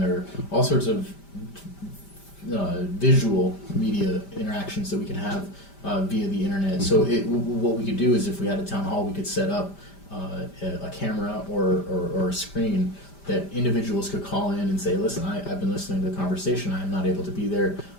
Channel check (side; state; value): right; late; 5.1 ms